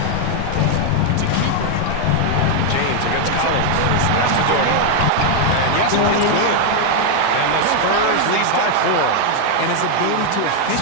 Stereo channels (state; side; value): different; both; correlation 0.00